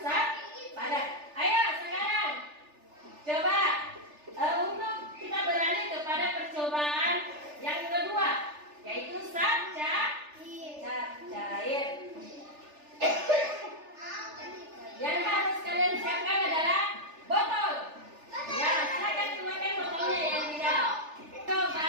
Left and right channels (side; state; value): left; late; 3.4 ms